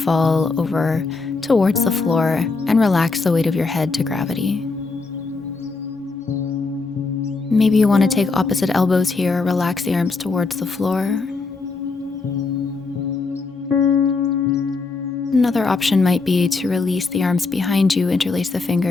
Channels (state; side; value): quieter; right; 4.0 dB